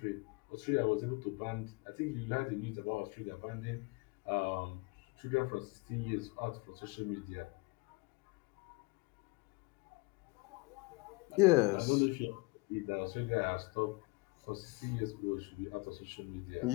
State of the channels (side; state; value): right; quieter; 25.9 dB